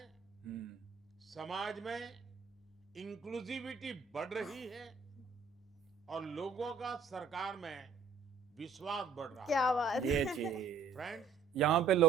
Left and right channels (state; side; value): quieter; left; 5.4 dB